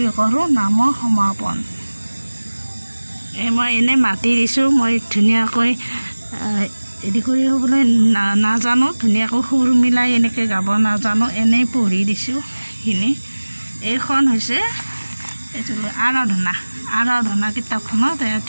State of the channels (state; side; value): inverted; both; correlation -1.00